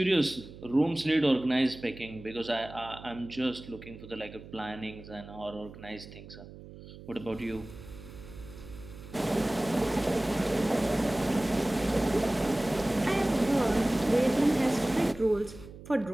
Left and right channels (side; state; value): right; noise; hum, 16 dB below the sound